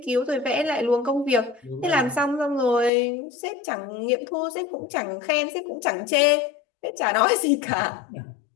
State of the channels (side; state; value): right; drops out; at 2.9 s